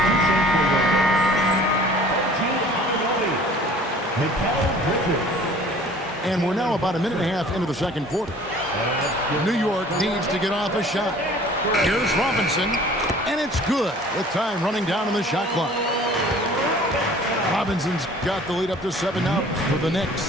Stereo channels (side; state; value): both; normal; correlation 0.49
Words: And we're now about a minute and a half into the second quarter. New York needs to get off a shot. Here's Robinson, and it's good with time running down on the shot clock. Robinson's got the lead up to 7 now for the